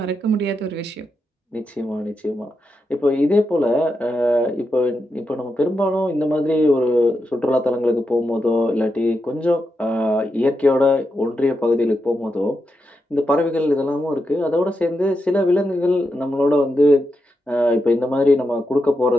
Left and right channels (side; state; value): both; normal; correlation 0.86